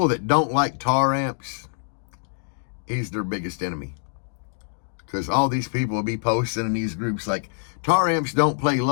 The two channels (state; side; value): silent; right; 62 dB below the other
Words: that don't like tar amps, he's their biggest enemy. Because all these people will be posting in these groups like, tar amps don't play